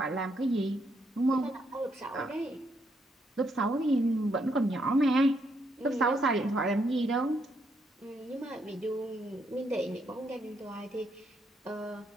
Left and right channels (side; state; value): both; normal; correlation 0.76